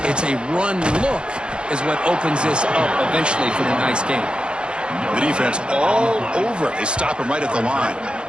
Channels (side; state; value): left; late; 0.053 ms